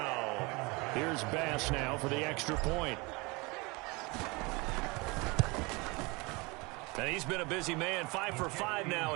Here's Bass now for the extra point. And he's been a busy man, 5 for 5 now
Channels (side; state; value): left; quieter; 26.3 dB